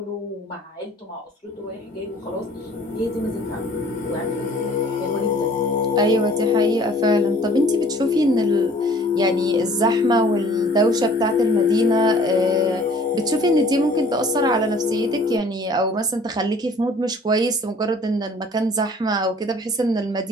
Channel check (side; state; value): both; normal; correlation 0.52